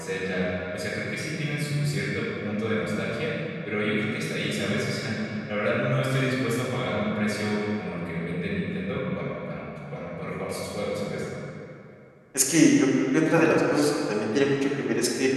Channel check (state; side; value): identical; both; correlation 1.00